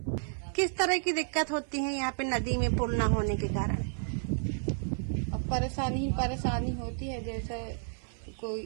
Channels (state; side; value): silent; left; 57 dB below the other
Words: किस तरह की दिक्कत होती है यहाँ पे नदी में पुल न होने के कारण? अब परेशानी होती है, जैसे